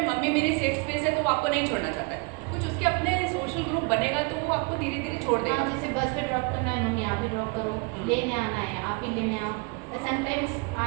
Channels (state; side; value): quieter; left; 30.6 dB